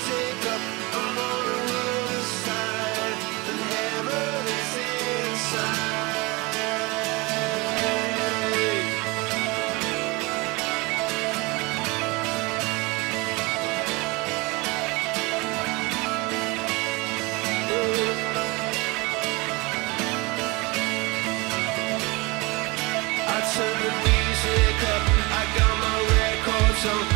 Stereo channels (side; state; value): left; quieter; 25.4 dB